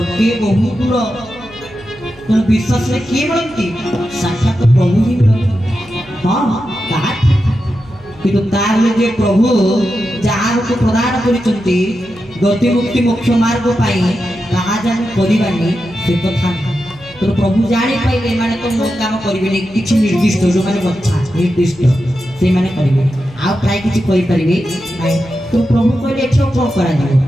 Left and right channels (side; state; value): right; noise; hum, 24 dB below the sound